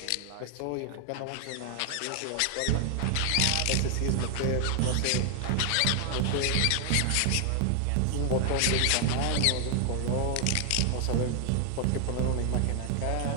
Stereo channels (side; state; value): both; different; correlation 0.00